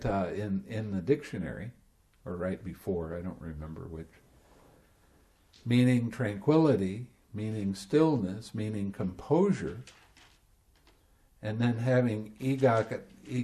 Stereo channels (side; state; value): both; identical; correlation 1.00